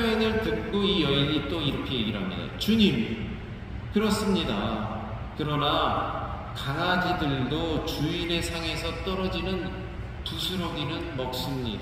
듣고 이 여인이 또 이렇게 얘기를 합니다. 주님, 그렇습니다. 그러나 강아지들도 주인의 상에서 떨어지는 부스러기는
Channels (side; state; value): both; identical; correlation 1.00